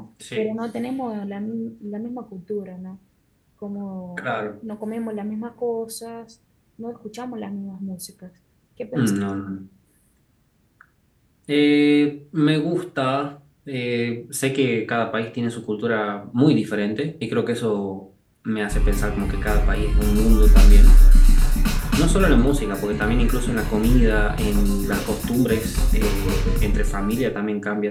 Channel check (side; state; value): both; identical; correlation 1.00